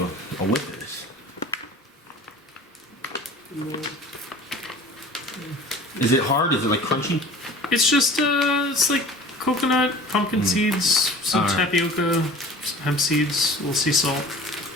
whiff of this. Is it hard? Is it like crunchy? It's just it's like coconut, pumpkin seeds, some All right. tapioca, some hemp seeds, a little sea salt.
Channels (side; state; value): both; normal; correlation 0.43